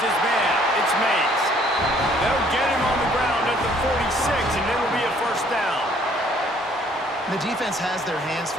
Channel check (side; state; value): both; normal; correlation 0.61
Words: man. It's Mays. They'll get him on the ground at the 46, and it'll be a first down. The defense has their hands